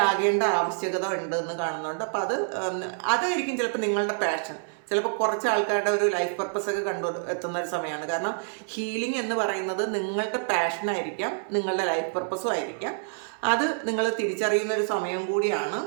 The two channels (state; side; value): silent; left; 60 dB below the other